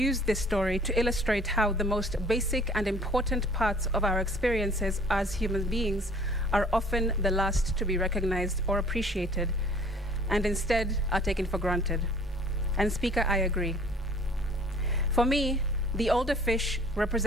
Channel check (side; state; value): both; normal; correlation 0.53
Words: this story to illustrate how the most basic and important parts of our experiences as human beings are often the last to be recognized or appreciated, and instead are taken for granted. And Speaker, I agree. For me, the older fish